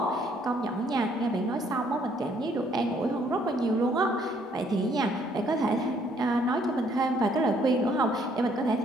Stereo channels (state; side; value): normal; both; correlation 0.65